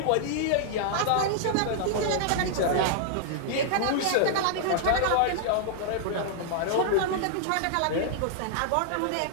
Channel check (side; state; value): both; different; correlation -0.01